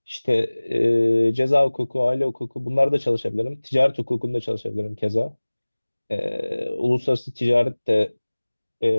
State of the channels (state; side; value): inverted; both; correlation -1.00